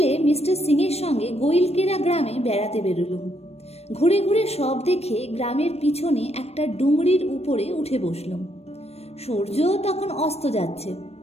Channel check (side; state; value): right; late; 0.30 ms